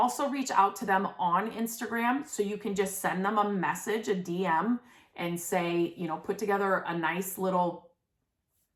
reach out to them on Instagram. So you can just send them a message, a DM, and say, put together a nice little,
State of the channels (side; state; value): both; identical; correlation 1.00